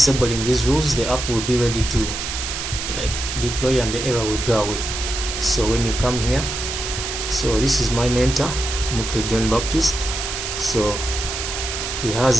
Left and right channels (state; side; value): noise; right; hiss, 5 dB below the sound